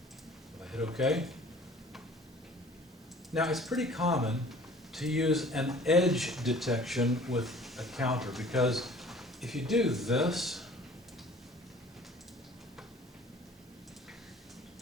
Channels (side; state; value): both; normal; correlation 0.49